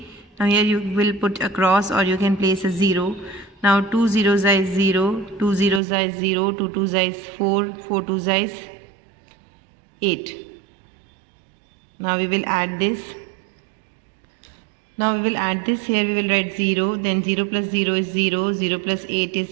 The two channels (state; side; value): drops out; left; at 5.8 s